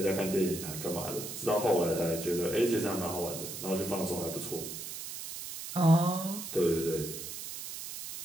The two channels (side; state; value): right; noise; hiss, 8 dB below the sound